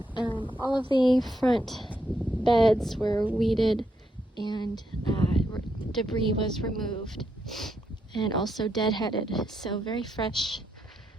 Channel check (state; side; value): normal; both; correlation 0.79